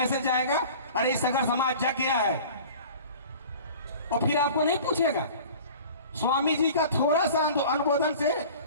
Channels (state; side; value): inverted; both; correlation -0.42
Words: आएगा, अरे सागर समाज जग गया है। और फिर आपको नहीं पूछेगा। स्वामी जी का थोड़ा सा अनुमोदन से,